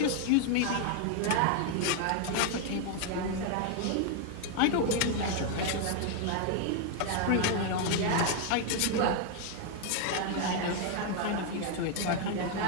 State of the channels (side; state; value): both; different; correlation 0.00